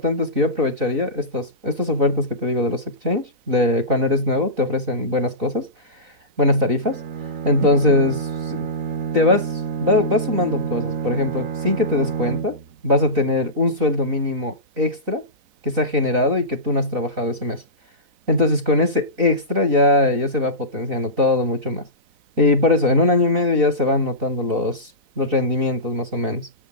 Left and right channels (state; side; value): late; left; 4.0 ms